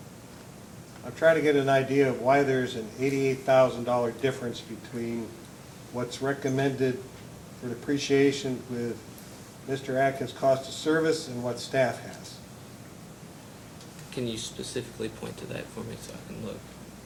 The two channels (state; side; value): identical; both; correlation 1.00